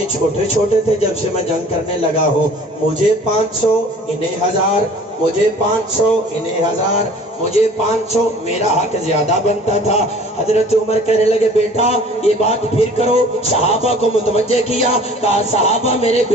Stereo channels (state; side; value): normal; both; correlation 0.49